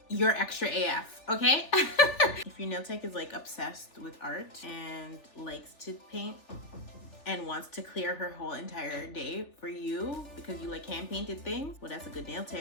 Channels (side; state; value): right; late; 3.4 ms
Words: you're extra AF, okay? If your nail tech is like obsessed with art and likes to paint and wants to clear her whole entire day for you because you like hand painted things, well, that's a good nail